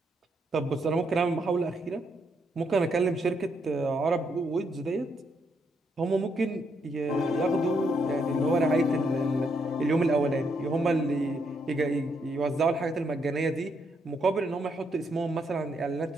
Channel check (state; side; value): normal; both; correlation 0.76